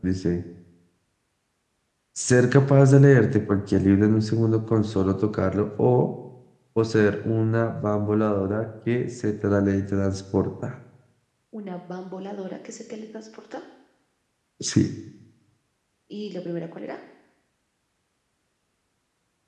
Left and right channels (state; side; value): identical; both; correlation 1.00